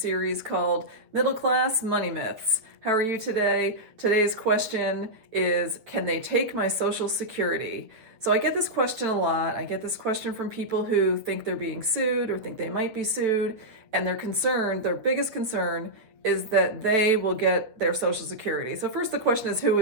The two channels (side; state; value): left; late; 8.8 ms